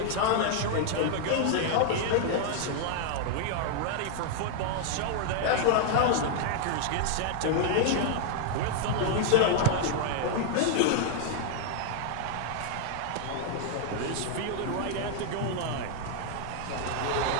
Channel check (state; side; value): different; both; correlation 0.00